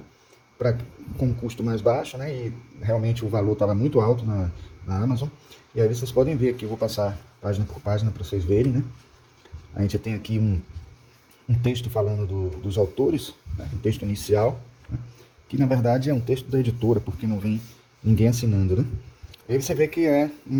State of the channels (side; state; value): both; identical; correlation 1.00